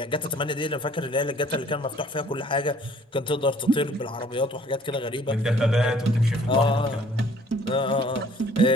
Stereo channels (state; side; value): normal; both; correlation 0.56